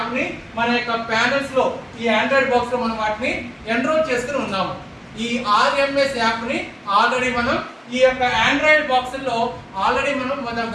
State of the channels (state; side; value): identical; both; correlation 1.00